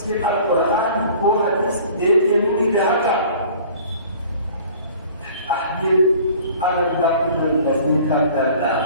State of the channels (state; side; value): inverted; both; correlation -0.48